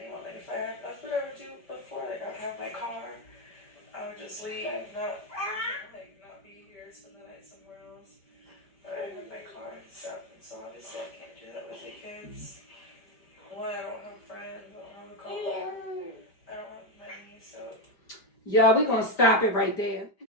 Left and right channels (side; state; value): right; late; 5.1 ms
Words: Like, if I had, that's what I would do before. Like, I would have my car, I would just leave, not be here, spend the night somewhere else. But I have my car and stuff, and so obviously I can't do that with the kids. One, I don't have friends, I don't have a car. Y'all, we're going to stop it right there.